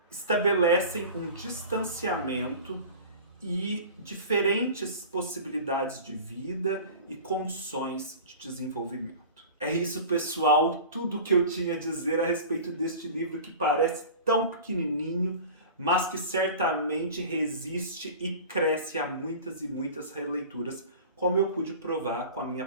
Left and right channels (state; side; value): inverted; both; correlation -0.38